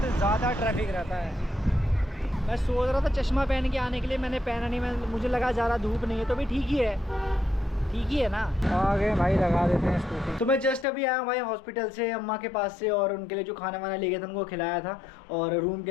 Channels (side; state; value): right; drops out; at 10.9 s